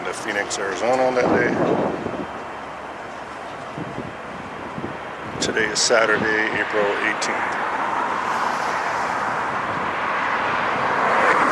to Phoenix, Arizona on that day. Today is Saturday, April 18th.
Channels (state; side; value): identical; both; correlation 1.00